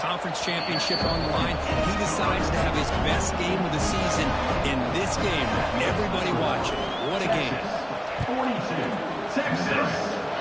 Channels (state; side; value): identical; both; correlation 1.00